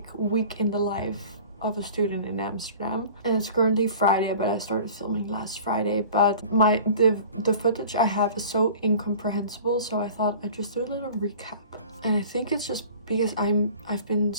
week in the life of a student in Amsterdam. And it's currently Friday, but I started filming last Friday. But the footage I have is so incomprehensible, so I thought I'd just do a little recap. And I think it's just because I've been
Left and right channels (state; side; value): inverted; both; correlation -0.43